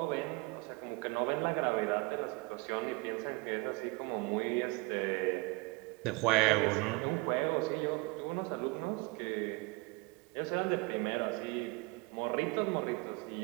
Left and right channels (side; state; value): left; quieter; 25.8 dB